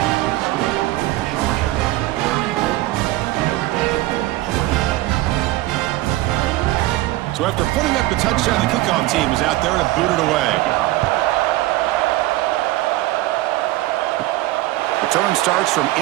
So after putting up the touchdown, the kickoff team is out there to boot it away. Return starts from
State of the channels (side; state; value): left; quieter; 17.6 dB